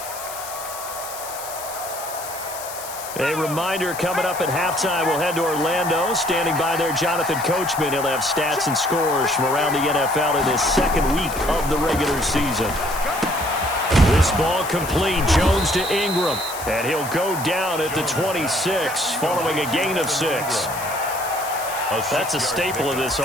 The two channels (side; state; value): left; noise; hiss, 11 dB below the sound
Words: A reminder coming up at halftime, we'll head to Orlando. Standing by there, Jonathan Coachman. He'll have stats and scores from around the NFL in this second week of the regular season. This ball complete. Jones to Ingram. And he'll go down at the 26 following a gain of 6. That's a staple of this